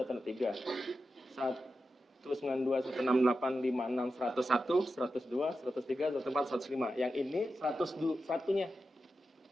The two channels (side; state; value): both; normal; correlation 0.90